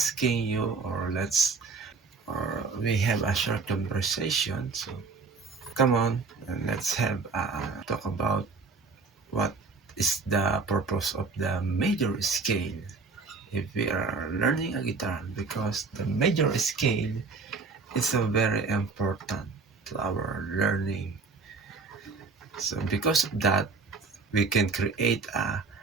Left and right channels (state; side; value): quieter; left; 4.4 dB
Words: you, or we have a short conversation. So come on, and let's have talk about what is the purpose of the major scale if we are learning a guitar, because the major scale is a very important to our learning. So because of that, we can create